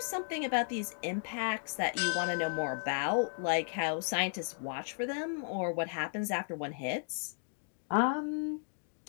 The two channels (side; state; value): right; silent; digital silence